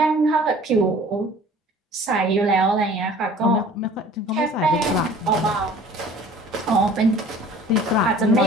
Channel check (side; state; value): both; normal; correlation 0.49